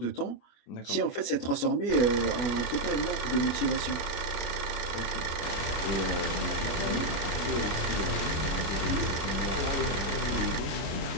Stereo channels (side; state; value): right; late; 24 ms